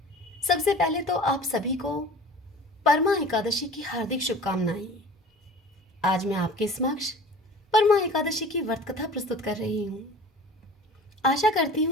सबसे पहले तो आप सभी को परमा एकादशी की हार्दिक शुभकामनाएं। आज मैं आपके समक्ष परमा एकादशी की व्रत कथा प्रस्तुत कर रही हूँ। आशा करती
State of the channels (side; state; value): both; normal; correlation 0.42